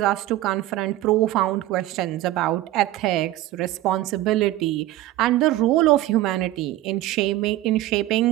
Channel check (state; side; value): quieter; left; 15.6 dB